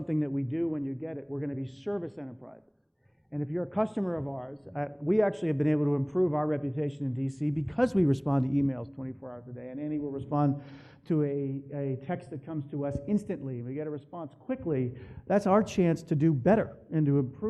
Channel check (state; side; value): identical; both; correlation 1.00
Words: that we do when you get it. We're going to be service enterprises. And if you're a customer of ours, we actually have been able to improve our reputation in D.C. because we respond to emails 24 hours a day. And Andy will respond to a text that comes to us instantly. We get a response quickly. That's our chance to do better and to